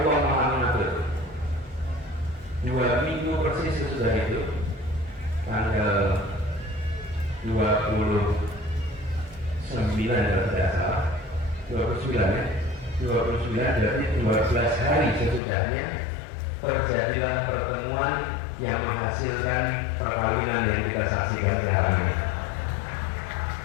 Maha mengatur. 2 minggu persis sesudah itu, tanggal 29 kalau tidak salah, 29 ya. 29 berarti 12 hari sesudahnya terjadilah pertemuan yang menghasilkan perkawinan yang kita saksikan sekarang ini.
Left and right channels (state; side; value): drops out; right; at 15.4 s